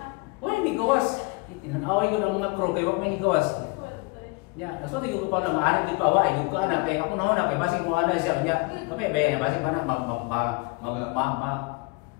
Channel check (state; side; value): quieter; right; 27.3 dB